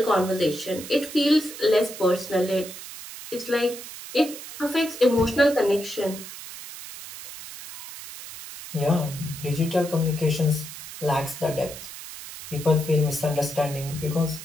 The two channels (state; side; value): noise; right; hiss, 12 dB below the sound